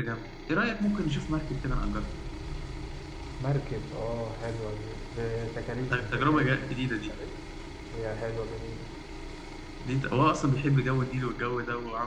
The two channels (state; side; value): identical; both; correlation 1.00